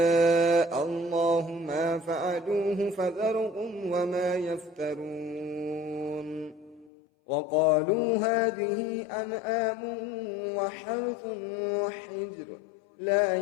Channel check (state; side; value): drops out; right; at 6.9 s